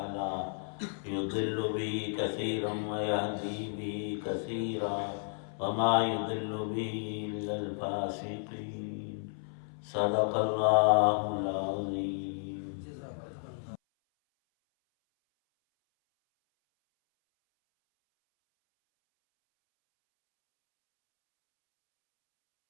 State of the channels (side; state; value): right; silent; 56 dB below the other